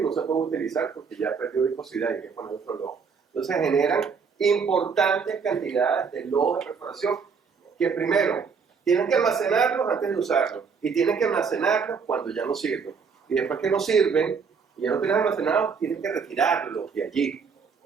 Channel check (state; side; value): quieter; left; 5.7 dB